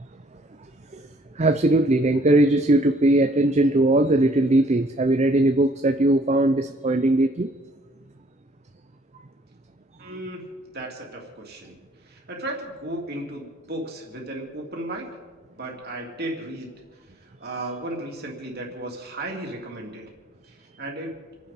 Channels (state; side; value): normal; both; correlation 0.61